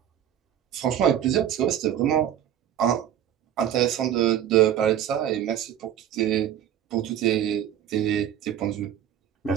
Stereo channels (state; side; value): quieter; left; 10.4 dB